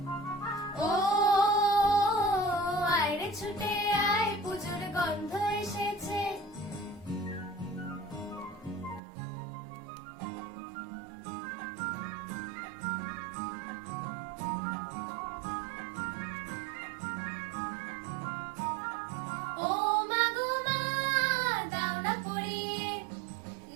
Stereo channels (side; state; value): left; drops out; at 9.0 s